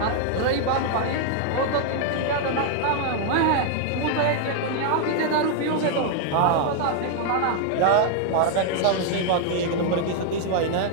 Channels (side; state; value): both; different; correlation 0.00